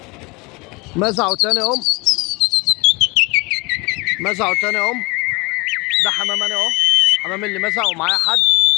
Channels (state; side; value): quieter; right; 25.5 dB